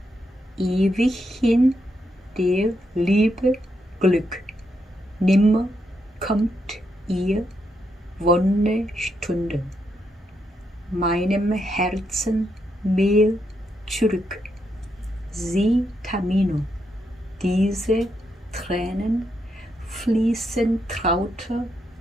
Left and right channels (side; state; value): both; normal; correlation 0.80